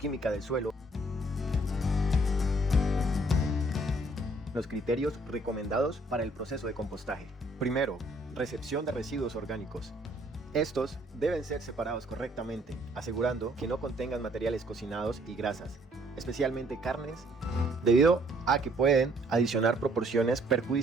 del suelo. Los criterios recomendados para el proceso de compostaje. Primero, recepción de residuos orgánicos. Estos deben ser separados correctamente, asegurando que no contengan materiales cocinados y grasas, especialmente carnes, debido a que pueden adicionar proporciones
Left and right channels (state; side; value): normal; both; correlation 0.63